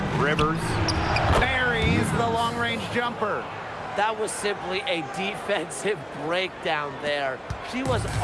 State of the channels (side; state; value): both; identical; correlation 1.00